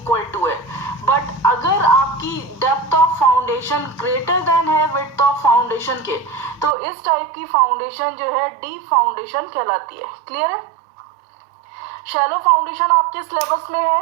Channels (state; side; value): drops out; left; at 6.8 s